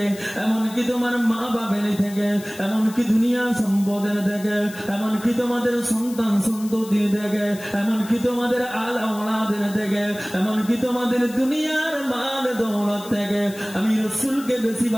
এমনকি তোমার মা বাবের থেকে, এমনকি দুনিয়ার সম্পদের থেকে, এমনকি তোমাদের সন্তান সন্ততির থেকে, এমনকি তোমাদের আল আওলাদের থেকে, এমনকি তোমাদের দুনিয়ার মাল দৌলত থেকে আমি রসুলকে বেশি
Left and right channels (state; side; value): noise; left; hiss, 17 dB below the sound